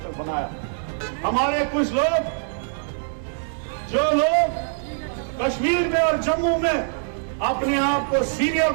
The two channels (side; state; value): left; silent; digital silence